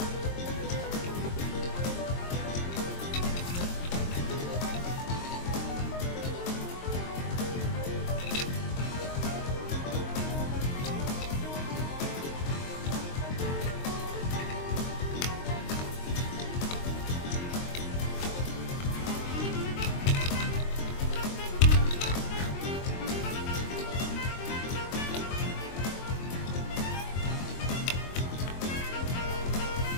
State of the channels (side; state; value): right; late; 22 ms